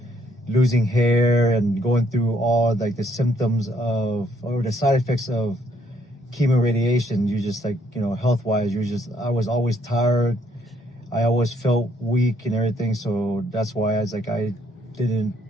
losing hair and going through all like the symptoms or the side effects of chemo radiation. You just like, health wise, I was always tired. I always felt weak and everything. So that's why I didn't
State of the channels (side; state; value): both; normal; correlation 0.69